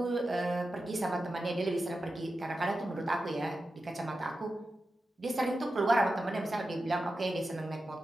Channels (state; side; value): normal; both; correlation 0.91